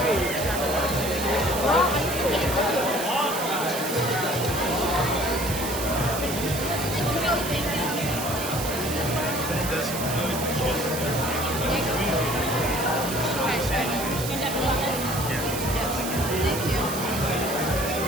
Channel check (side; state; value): right; noise; hiss, 6 dB below the sound